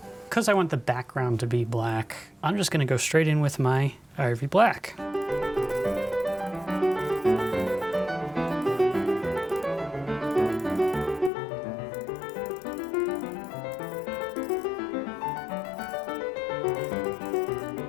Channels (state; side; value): drops out; right; at 11.3 s